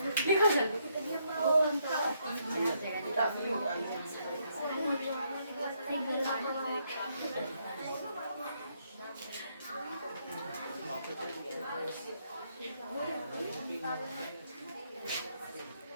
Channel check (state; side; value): inverted; both; correlation -0.74